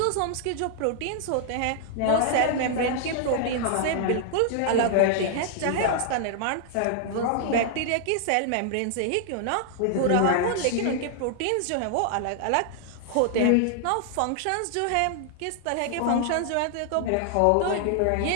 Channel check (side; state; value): both; different; correlation 0.00